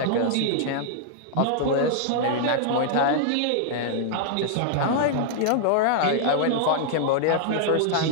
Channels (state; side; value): different; both; correlation -0.01